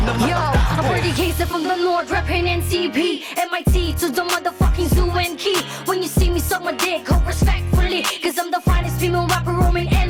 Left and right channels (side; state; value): both; identical; correlation 1.00